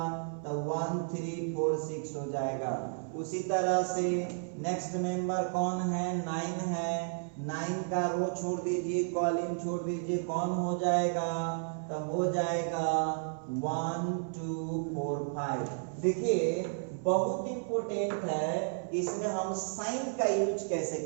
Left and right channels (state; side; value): silent; left; 56 dB below the other